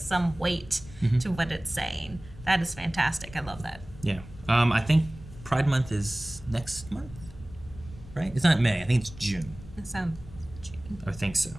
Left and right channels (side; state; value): left; noise; rumble, 17 dB below the sound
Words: weight to what it's saying. That is fantastic. I love that. Yeah. I think Pride Month is next month, right? It's not May. I think it's June. It sounds. I think so.